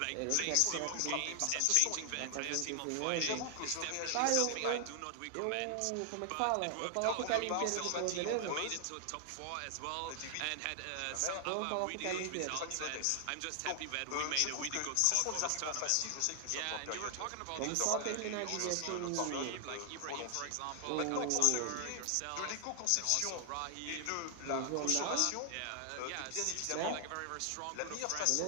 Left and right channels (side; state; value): both; different; correlation 0.00